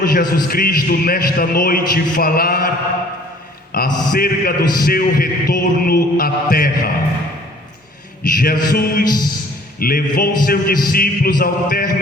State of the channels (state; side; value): normal; both; correlation 0.54